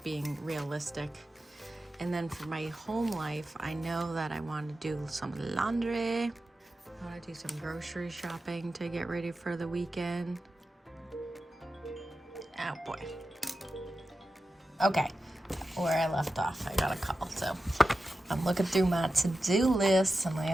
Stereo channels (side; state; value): both; normal; correlation 0.92